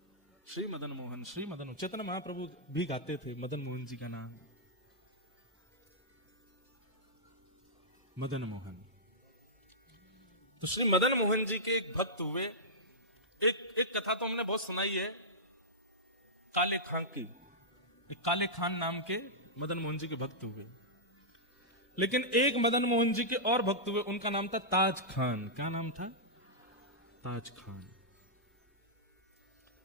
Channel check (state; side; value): normal; both; correlation -0.12